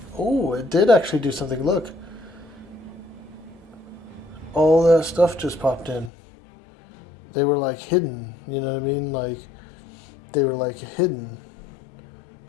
Oh, it did actually do something. Look. All that stuff just popped in. They were like hidden, you know what I mean? Like, they were like hidden.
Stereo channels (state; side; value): drops out; right; at 6.1 s